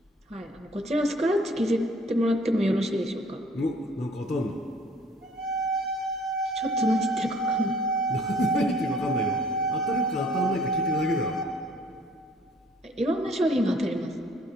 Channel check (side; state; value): both; normal; correlation 0.56